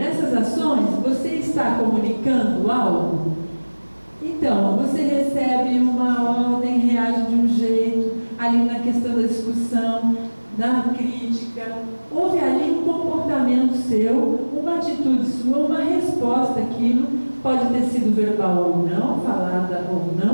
ações, você está comunicando algo? Então, você recebe uma ordem, reage de um jeito, ali na questão da discussão, na crítica, houve ali um comportamento seu, uma atitude sua, uma resposta àquilo, pode ter sido verbal ou não, falada ou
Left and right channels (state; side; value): inverted; both; correlation -1.00